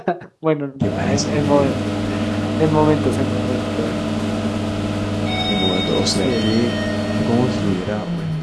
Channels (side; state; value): both; identical; correlation 1.00